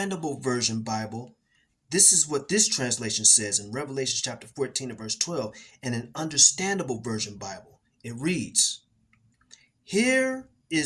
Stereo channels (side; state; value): both; identical; correlation 1.00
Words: version Bible, this is what this translation says in Revelation chapter 14 and verse 12, in an understandable version Bible. It reads, here